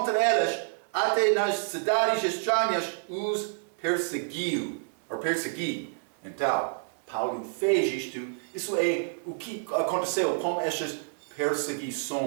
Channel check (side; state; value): left; silent; 59 dB below the other